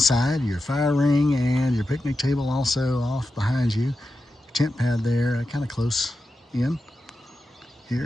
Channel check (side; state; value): both; normal; correlation 0.90